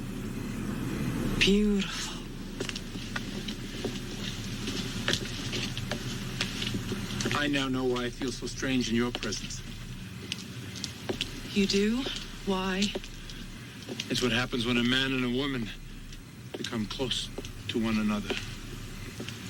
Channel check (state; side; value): identical; both; correlation 1.00